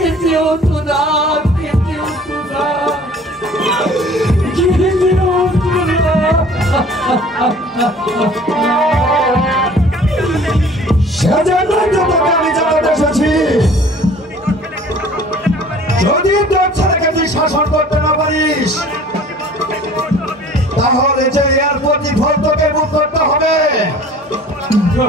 হতো না খেতে হতো না খেতে হতো না। সেজন্যই তো তোকে আমি জানাতে এসেছি। যদি তোর ছেলেকে তুই শাসন করতে না পারিস তাহলে যে এর প্রতিফল তোকে ভোগ করতে হবে।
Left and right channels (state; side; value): normal; both; correlation 0.49